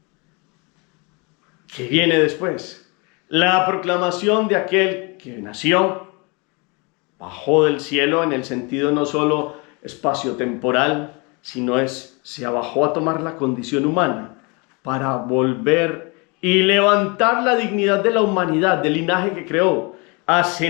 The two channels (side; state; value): right; quieter; 30.0 dB